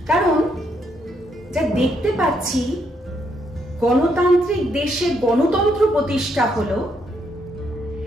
কারণ যা দেখতে পাচ্ছি, গণতান্ত্রিক দেশে গণতন্ত্র প্রতিষ্ঠা হলো,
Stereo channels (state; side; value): normal; both; correlation 0.75